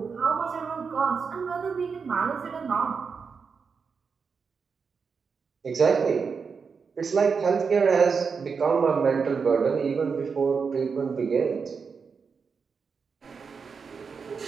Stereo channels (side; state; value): left; quieter; 5.6 dB